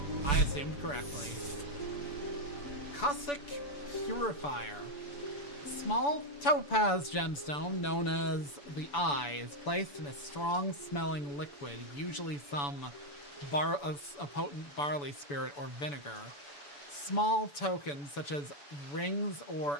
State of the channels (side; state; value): right; late; 6.9 ms